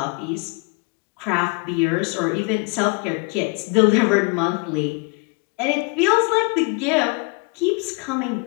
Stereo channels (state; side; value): quieter; right; 31.0 dB